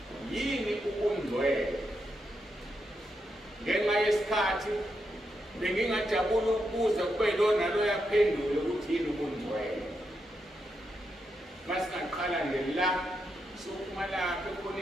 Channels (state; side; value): normal; both; correlation 0.83